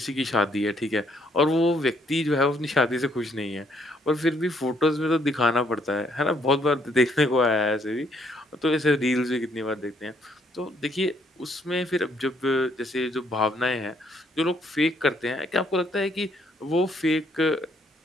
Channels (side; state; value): both; normal; correlation 0.68